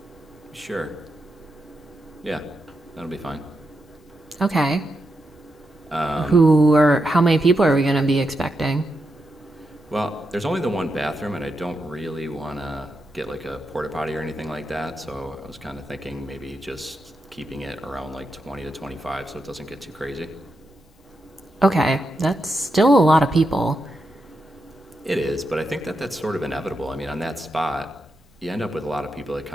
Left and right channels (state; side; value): normal; both; correlation 0.85